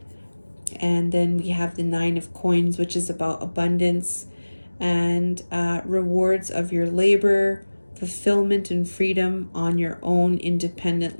And then we have the 9 of coins, which is about abundance and rewards of your labor, fulfillment and freedom on your own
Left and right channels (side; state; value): both; inverted; correlation -1.00